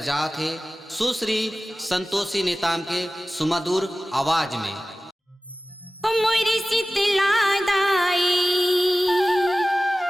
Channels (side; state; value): both; normal; correlation 0.96